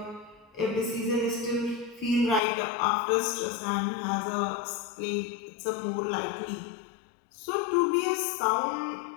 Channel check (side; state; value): right; drops out; at 2.4 s